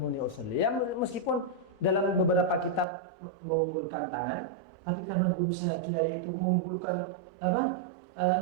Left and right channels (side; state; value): left; drops out; at 2.9 s